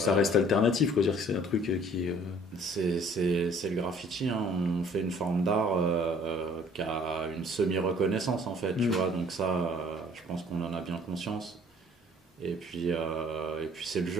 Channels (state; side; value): normal; both; correlation 0.55